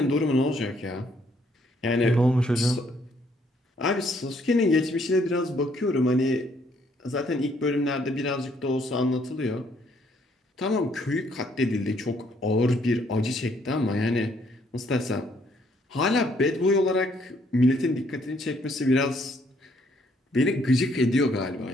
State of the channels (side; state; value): both; normal; correlation 0.68